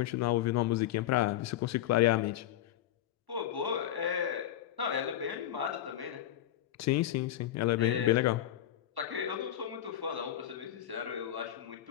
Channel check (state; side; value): quieter; right; 11.9 dB